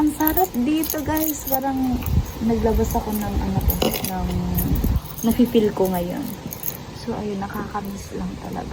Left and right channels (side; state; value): both; identical; correlation 1.00